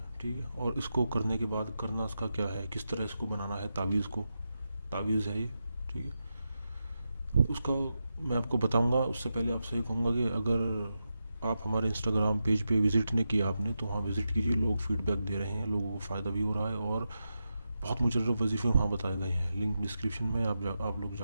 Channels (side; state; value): both; inverted; correlation -0.89